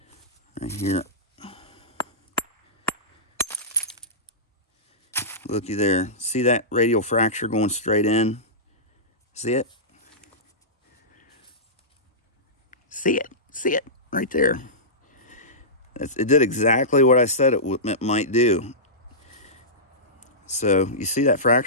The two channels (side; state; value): both; normal; correlation -0.17